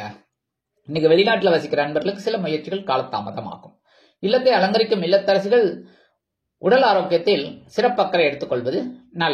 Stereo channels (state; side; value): identical; both; correlation 1.00